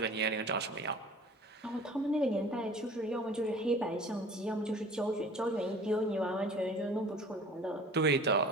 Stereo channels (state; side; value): normal; both; correlation 0.45